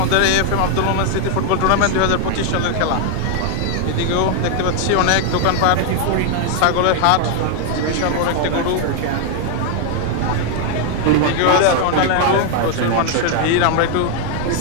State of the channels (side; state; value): both; different; correlation 0.00